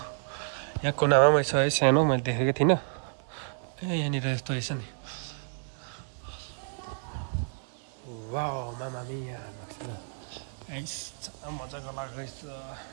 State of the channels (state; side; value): silent; left; 58 dB below the other